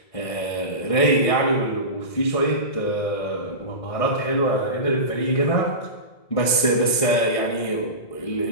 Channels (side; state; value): right; late; 1.6 ms